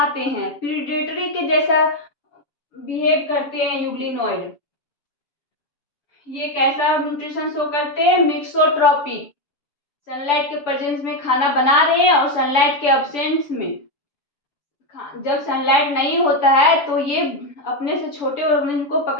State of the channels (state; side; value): late; right; 6.9 ms